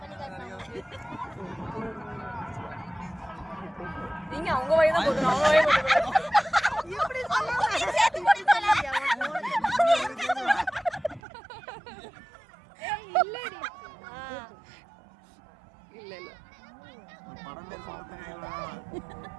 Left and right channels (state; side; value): drops out; left; at 11.2 s